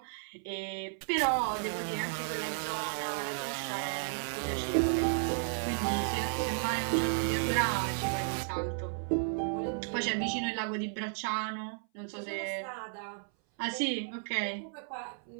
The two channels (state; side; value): silent; left; 55 dB below the other